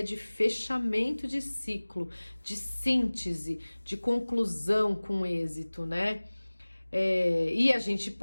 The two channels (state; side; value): inverted; both; correlation -1.00